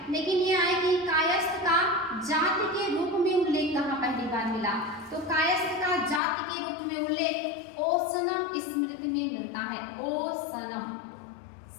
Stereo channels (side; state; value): right; drops out; at 6.2 s